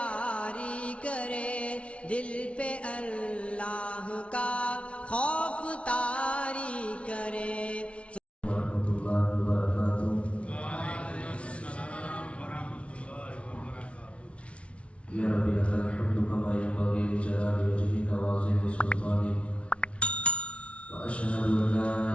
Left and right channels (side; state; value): right; late; 0.061 ms